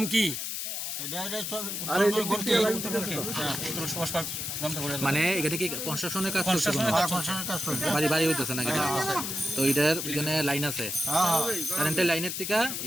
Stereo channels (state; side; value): noise; left; hiss, 4 dB below the sound